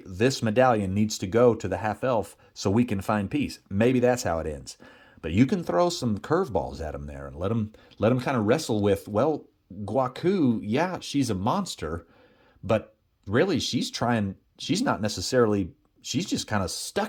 this medallion needs to go to the half-elf so we can find peace. Maybe that's how it ends. But you can throw some curveballs at them there and let them kind of wrestle with, well, Guaku, yeah, she's a monster, but really she's not necessarily, she's just kind of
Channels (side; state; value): both; identical; correlation 1.00